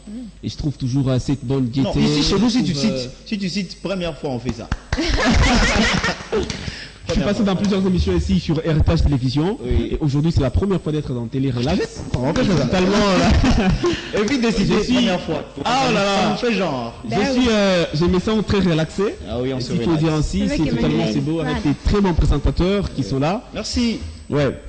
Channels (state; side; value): identical; both; correlation 1.00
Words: et je trouve toujours cette bonne gaieté. Non, ici chez nous, si tu cites première fois, on fait ça. Je suis passé dans plusieurs émissions ici sur Héritage Télévision et aujourd'hui c'est la première fois d'être dans Télé Relax. On fait ça. Évite de citer première fois. Ah oh là là. On fait genre. Je me sens très relaxé. Ah oui, on se relaxe. Il faut dire ainsi, c'est totalement c'est beau avec des très bons présentateurs qui sont là. Merci. Ouais.